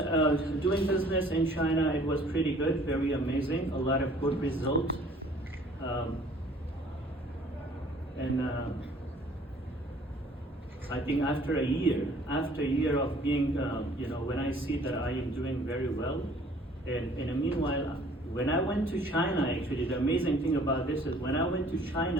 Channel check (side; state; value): both; normal; correlation 0.55